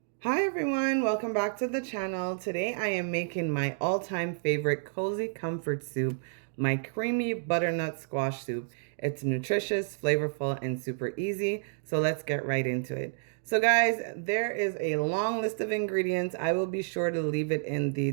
Hi everyone, welcome back to the channel. Today I am making my all-time favorite cozy comfort soup, my creamy butternut squash soup. It's nutritious, flavorful, and super easy, so let's get right into it. So guys, there is a long list of ingredients. I will be sure to leave it in the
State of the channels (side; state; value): left; silent; digital silence